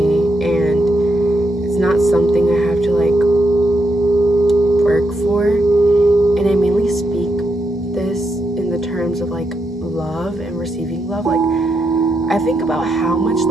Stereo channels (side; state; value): both; normal; correlation 0.82